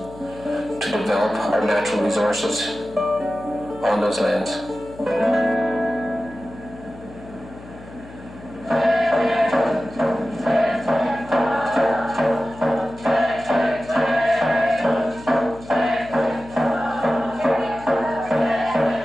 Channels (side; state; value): left; noise; hum, 18 dB below the sound